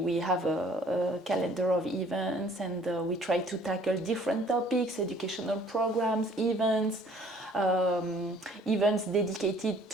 have a calendar of events, and we try to tackle different topics, educational programs, events, events dedicated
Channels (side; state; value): both; normal; correlation 0.56